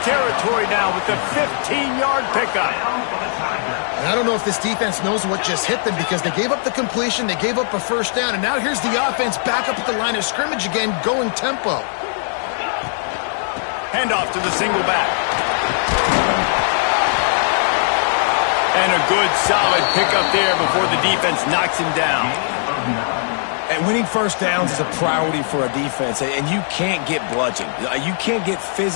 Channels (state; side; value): silent; right; digital silence